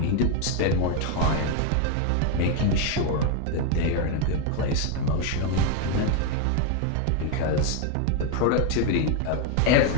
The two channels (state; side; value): different; both; correlation 0.01